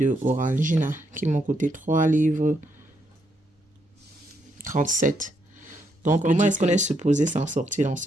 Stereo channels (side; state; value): both; normal; correlation 0.77